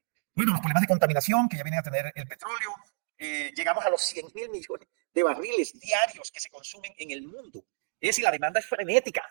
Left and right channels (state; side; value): silent; left; digital silence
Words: Bueno, los problemas de contaminación que ya vienen a tener el petróleo, llegamos a los 100.000 millones de barriles diarios que se consumen en el mundo. Es decir, la demanda es frenética,